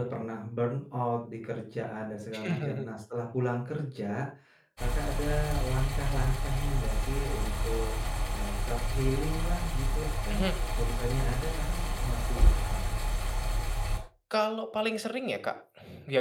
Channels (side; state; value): both; identical; correlation 1.00